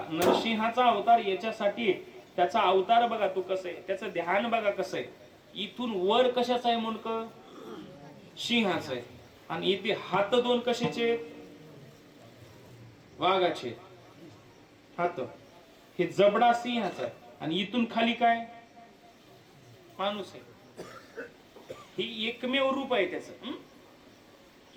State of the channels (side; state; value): both; identical; correlation 1.00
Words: नरसिंहाचा अवतार याच्यासाठी, त्याचा अवतार बघा तू कसं आहे, त्याचं ध्यान बघा कसं आहे. इथून वर कशाचं आहे मुंडक, सिंहाचं आहे. आणि इथे हात दोन कशाचे? वाघाचे हात. हे जबडा सिंहाचा आणि इथून खाली काय? माणूस आहे. ही एकमेव रूप आहे त्याचं.